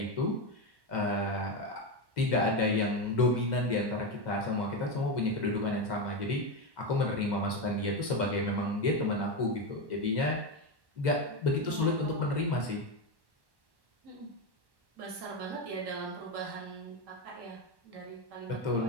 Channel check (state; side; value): late; left; 1.1 ms